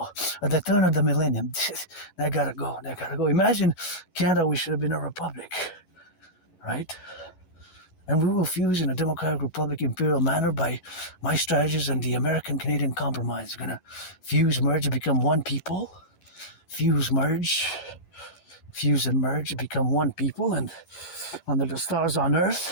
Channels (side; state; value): right; late; 11 ms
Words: at the turn of the millennium. That gotta go. Imagine Canada, we should have been a republic, right? And we will fuse in a democratic republic imperial manner by my strategies and the American-Canadian compromise. We're going to fuse, merge, become one people. Fuse, and merge, become one people. And under the stars on